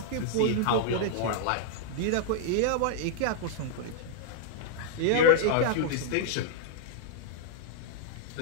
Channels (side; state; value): both; different; correlation -0.01